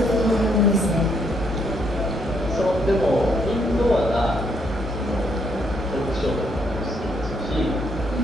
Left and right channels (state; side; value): normal; both; correlation 0.72